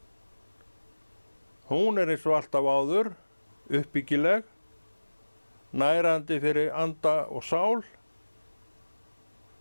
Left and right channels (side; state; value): both; inverted; correlation -1.00